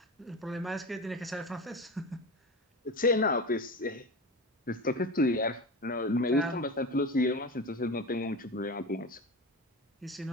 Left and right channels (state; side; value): normal; both; correlation 0.27